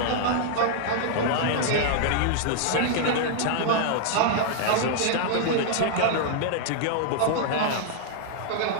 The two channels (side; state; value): both; different; correlation -0.01